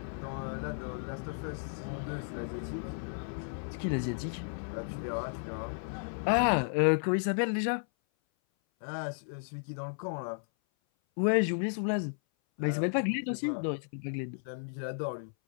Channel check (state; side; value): silent; right; 55 dB below the other